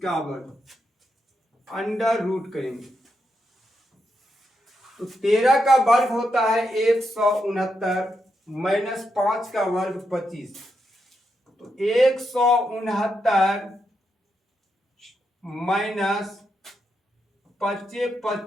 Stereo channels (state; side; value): normal; both; correlation 0.83